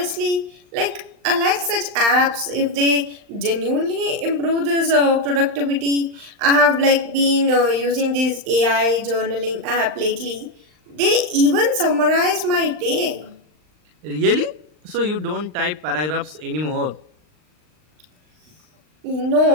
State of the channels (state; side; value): late; left; 39 ms